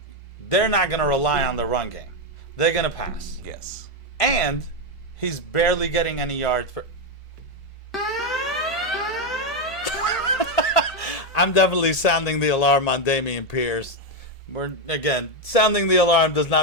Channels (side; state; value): both; normal; correlation 0.05